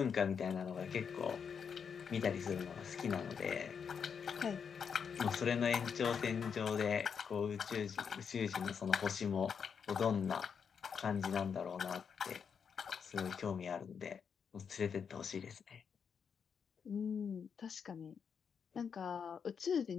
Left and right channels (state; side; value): quieter; right; 6.7 dB